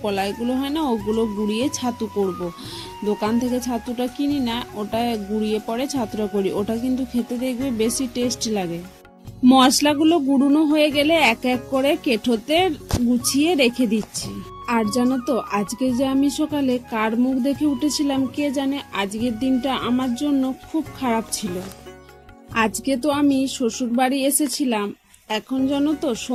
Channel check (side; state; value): both; identical; correlation 1.00